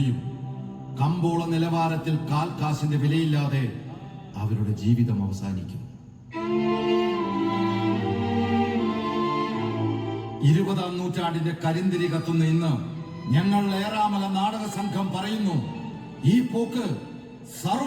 കമ്പോള നിലവാരത്തിൽ കാൽക്കാശിന്റെ വിലയില്ലാതെ അവരുടെ ജീവിതം അവസാനിക്കും. 20-ാം നൂറ്റാണ്ടിന്റെ കരിന്തിരി കത്തുന്ന ഇന്ന് ഞങ്ങൾ ഏറാമല നാടക സംഘം പറയുന്നു, ഈ പോക്ക്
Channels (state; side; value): identical; both; correlation 1.00